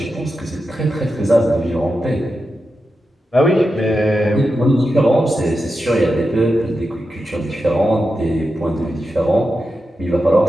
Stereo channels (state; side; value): normal; both; correlation 0.89